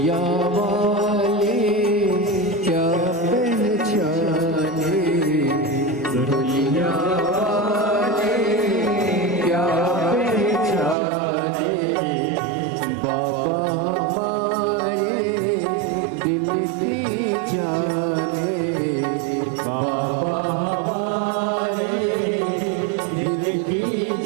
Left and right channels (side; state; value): left; drops out; at 11.0 s